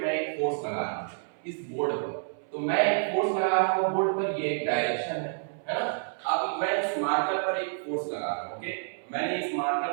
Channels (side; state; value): left; silent; 59 dB below the other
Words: मैं एक फोर्स लगा रहा हूं इस बोर्ड पर, तो मैं एक फोर्स लगा रहा हूं बोर्ड पर, ये एक डायरेक्शन है ना। अब मैं इस मार्कर पर एक फोर्स लगा रहा हूं। ओके, मैंने इस